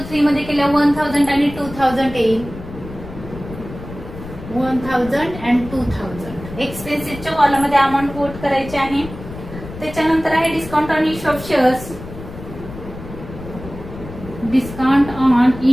मध्ये केल्या 1,000 आणि 2,000 येईल. 1,000 अँड 2,000 एक्सपेन्सेसच्या कॉलम मध्ये अमाऊंट कोट करायची आहे. त्याच्यानंतर आहे discount on issue of shares. Discount on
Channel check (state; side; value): noise; left; rumble, 13 dB below the sound